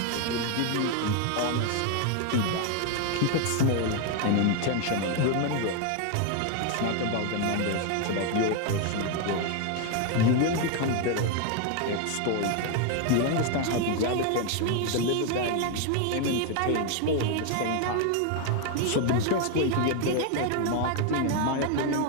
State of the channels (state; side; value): different; both; correlation 0.01